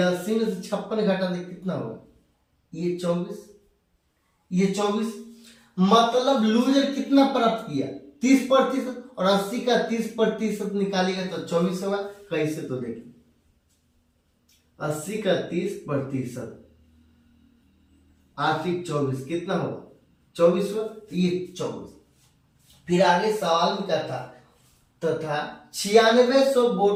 80 में से 56 घटा दे, कितना होगा? ये 24। ये 24, मतलब लूजर कितना प्राप्त किया? 30%। और 80 का 30% निकालेगा तो 24 होगा। कैसे? तो देखिए, 80 का 30% 8 24 कितना होगा? 24 होगा। ये 24। फिर आगे सवाल में क्या था? तथा 9600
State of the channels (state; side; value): identical; both; correlation 1.00